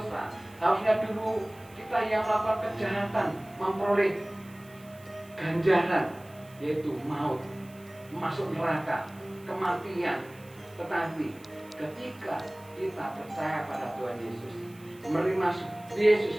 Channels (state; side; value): noise; right; hiss, 25 dB below the sound